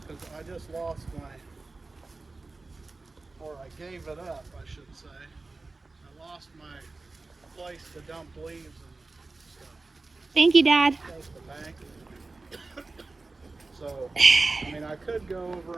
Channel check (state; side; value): quieter; left; 3.5 dB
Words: Because I just lost or I gave it up, I should say. I lost my place to dump leaves and stuff. Thank you, Dad. Close to the bank. So, I mean, I could go